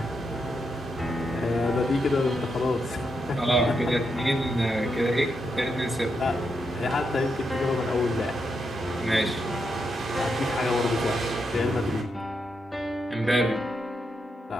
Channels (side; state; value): both; normal; correlation 0.83